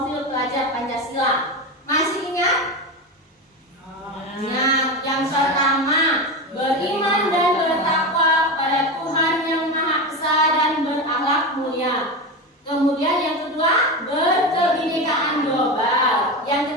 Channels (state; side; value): normal; both; correlation 0.20